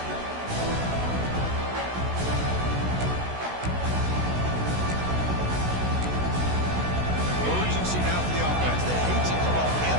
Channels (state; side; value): late; left; 16 ms